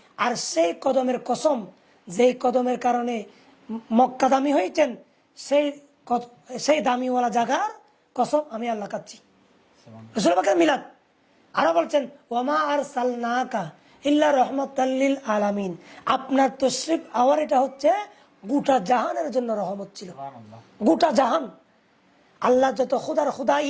আর সেই কদমের কসম, যেই কদমের কারণে মক্কা দামি হয়েছেন, সেই দামিওয়ালা জায়গার কসম আমি আল্লাহ খাচ্ছি। রাসূল পাকের মিলাদ আরো বলছেন ওয়ামা আরসালনাকা ইল্লা রাহমাতাল লিল আলামিন। আপনার তশরিফ আওয়ার এটা হচ্ছে গোটা জাহানের জন্য রহমত ছিল। গোটা জাহান, আল্লাহ যত খুদার খুদাই,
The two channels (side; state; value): both; identical; correlation 1.00